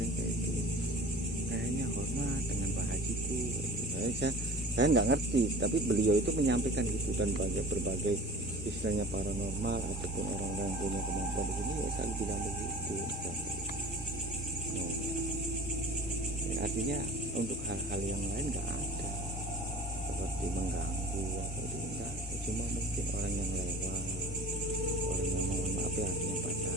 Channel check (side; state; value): both; normal; correlation 0.42